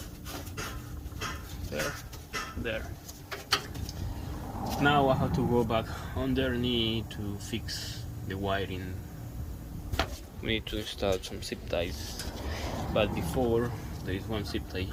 There, there. Now I have to go back underneath to fix the wiring. We need to install some zip ties, but before, there is one zip tie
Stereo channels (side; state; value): both; identical; correlation 1.00